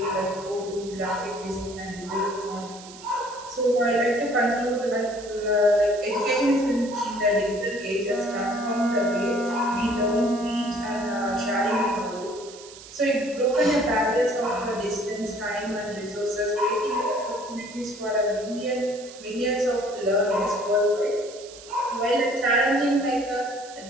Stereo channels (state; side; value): noise; right; hiss, 17 dB below the sound